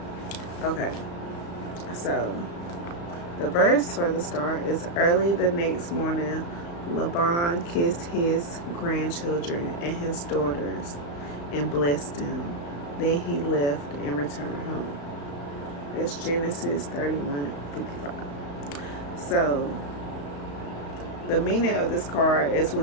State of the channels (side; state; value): right; late; 35 ms